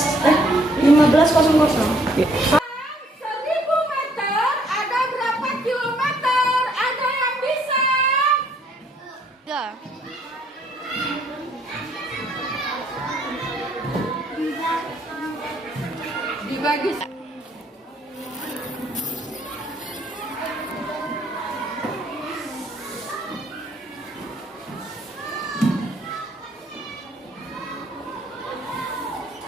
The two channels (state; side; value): normal; both; correlation 0.66